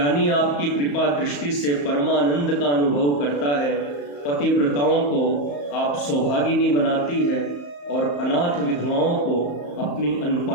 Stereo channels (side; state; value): right; late; 34 ms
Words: आपकी कृपा दृष्टि से परमानंद का अनुभव करता है। पतिव्रताओं को आप सौभागिनी बनाती है और अनाथ विधवाओं को अपनी